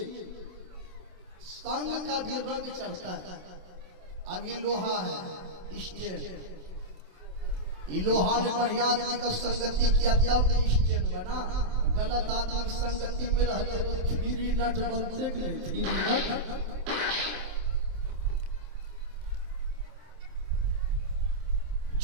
संग का भी रंग चढ़ता है। अब ये लोहा है स्टेन, ये लोहा ने बढ़िया आदमी का संगति किया तब नहीं स्टेन बना। गलत आदमी संगति में रह गए तो थ्री नट बनते के लिए थ्री नट।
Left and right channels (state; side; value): late; left; 27 ms